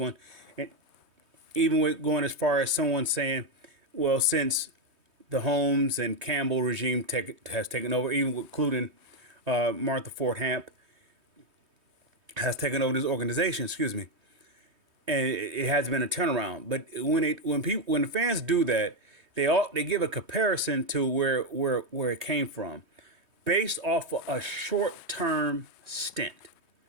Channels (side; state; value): left; late; 3.2 ms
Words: and even with going as far as someone saying, well, since the Holmes and Campbell regime has taken over, even including Martha Ford Hamp has taken over this organization. Excuse me, and it has been a turnaround. But when the fans do that, they give a comparison to where it came from, based off of a short term stint.